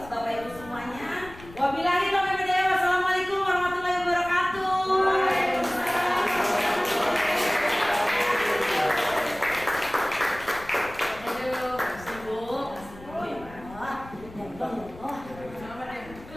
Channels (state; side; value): noise; left; rumble, 18 dB below the sound